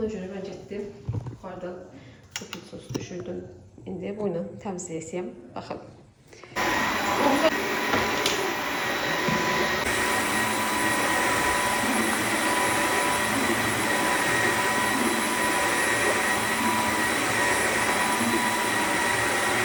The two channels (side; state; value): both; identical; correlation 1.00